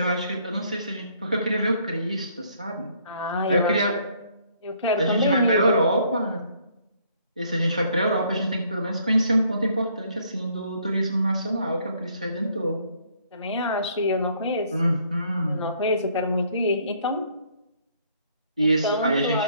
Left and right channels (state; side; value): inverted; both; correlation -0.65